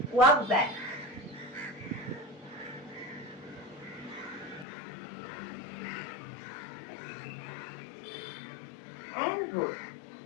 ওয়াক ব্যাক। And roll.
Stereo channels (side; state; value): right; drops out; at 4.7 s